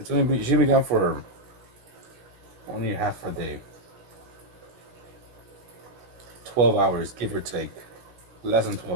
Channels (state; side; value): late; left; 16 ms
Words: only she should be gone for only half a day. 12 hours, give or take. Less than